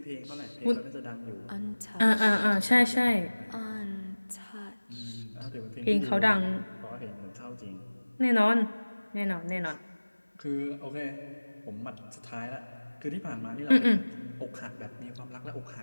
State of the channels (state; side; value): inverted; both; correlation -1.00